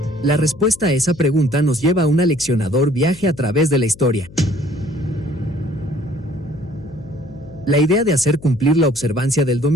La respuesta a esa pregunta nos lleva a un aleccionador viaje a través de la historia. La idea de hacer cumplir la observancia del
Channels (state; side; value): noise; left; hum, 20 dB below the sound